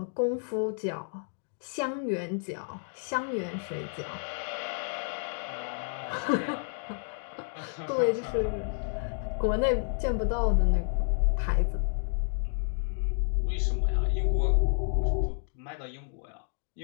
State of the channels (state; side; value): silent; right; digital silence